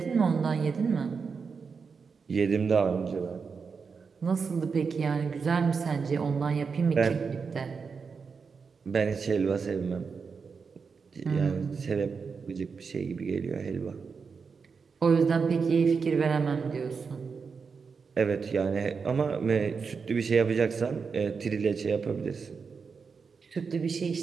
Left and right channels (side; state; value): left; quieter; 5.4 dB